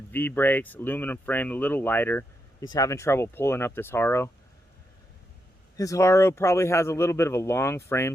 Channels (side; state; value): both; normal; correlation 0.83